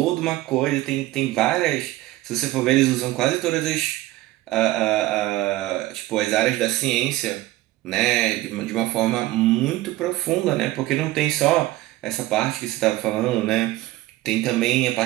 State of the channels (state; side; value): quieter; left; 16.8 dB